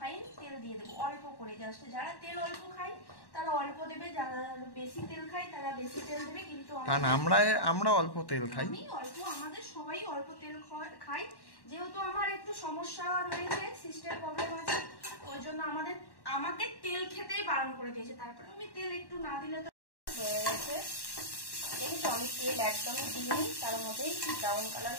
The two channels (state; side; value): late; right; 1.1 ms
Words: তেল দিয়ে দেবো, অল্প করে, জাস্ট যারা তেল অল্প খায় তারা অল্প দেবে, যারা বেশি তেল খায় তারা বেশি তেল দেবে। কিন্তু কারণ আমরা অল্প তেল খাই, আমি অল্প, আমাদের সবাই অল্প তেল খাই। যেহেতু আমার একটু সমস্যা রয়েছে, সিস্টেম প্রবলেম আছে, ওই জন্য আমাকে তেল খেতেই বারণ করে দিয়েছে। তারপরে আমি তেল একটু না দিলে তো হয়ে গেছে। দেখেছো আমি তেল একদমই দিইনি, তার মধ্যেই ব্রাউন কালার